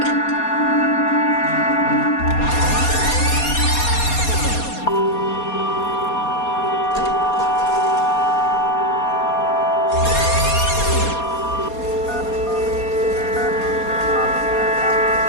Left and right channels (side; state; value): right; late; 4.2 ms